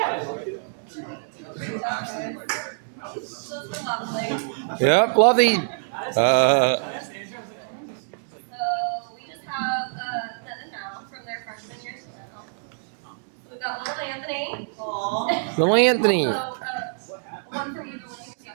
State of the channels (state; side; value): silent; left; digital silence